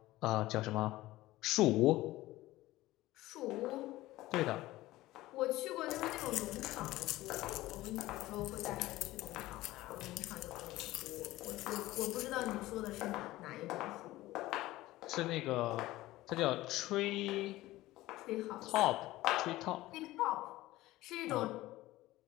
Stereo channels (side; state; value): right; quieter; 17.3 dB